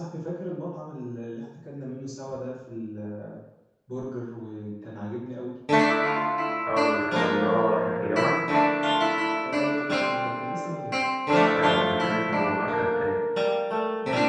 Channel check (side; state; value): both; identical; correlation 1.00